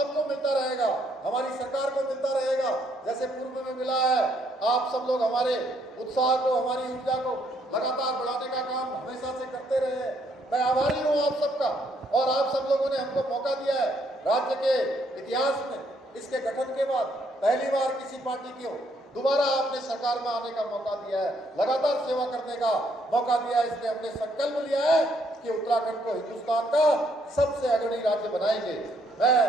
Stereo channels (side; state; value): both; normal; correlation 0.70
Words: मिलता रहेगा, हमारी सरकार को मिलता रहेगा, जैसे पूर्व में मिला है। आप सब लोग हमारे उत्साह को, हमारी ऊर्जा को लगातार बढ़ाने का काम हमेशा से करते रहे हैं। मैं आभारी हूँ आप सबका, और आप सब लोगों ने हमको मौका दिया है। राज्य के इतिहास में इसके गठन के बाद पहली बार किसी पार्टी को दोबारा आपने सरकार में आने का मौका दिया है, लगातार सेवा करने का मौका दिया है। इसलिए हमने संकल्प लिया है कि उत्तराखंड को हिंदुस्तान का सबसे अग्रणी राज्य बनाएंगे। मैं